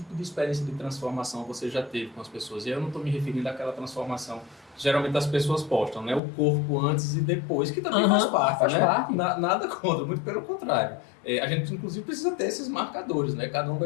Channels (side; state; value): right; drops out; at 6.2 s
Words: de experiência de transformação você já teve com as pessoas? E eu não estou me referindo àquela transformação que geralmente as pessoas postam, né? O corpo antes e depois, que também faz parte, né? Nada contra, muito pelo contrário. A gente, inclusive, precisa ter esses marcadores, né? Cada um